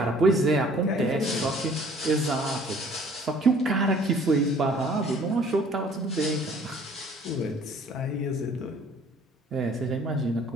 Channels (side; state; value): both; normal; correlation 0.55